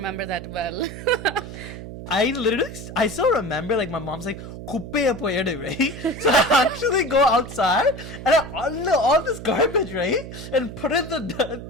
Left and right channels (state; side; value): noise; right; hum, 11 dB below the sound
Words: that well. I still remember, like, my mom's like, kuppeya poyedu, right? So I actually go outside and I unload all this garbage, right? And put it in the